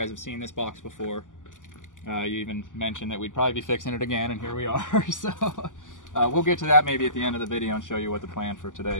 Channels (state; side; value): late; right; 0.87 ms